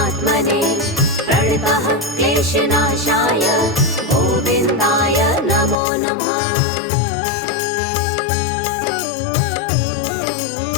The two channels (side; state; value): right; drops out; at 5.8 s